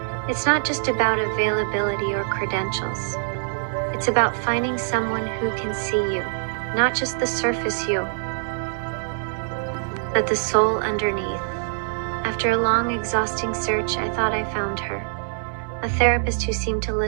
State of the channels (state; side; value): silent; left; digital silence